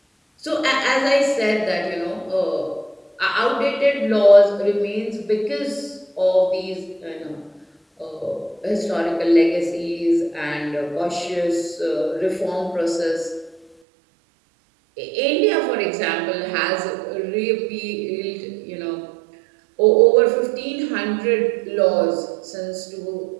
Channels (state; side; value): drops out; left; at 13.8 s